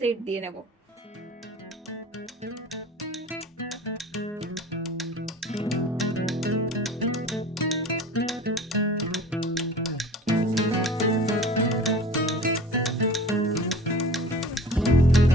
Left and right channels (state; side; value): normal; both; correlation 0.42